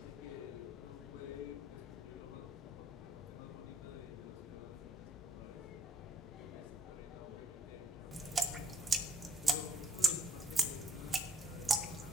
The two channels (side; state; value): both; normal; correlation 0.70